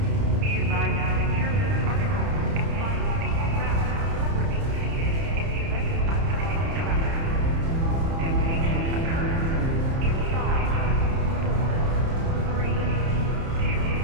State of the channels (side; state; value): left; late; 30 ms